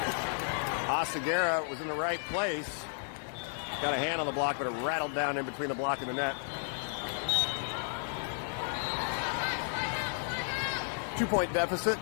Oseguera was in the right place. Got a hand on the block, but it rattled down in between the block and the net. 2-point deficit.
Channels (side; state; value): right; silent; 56 dB below the other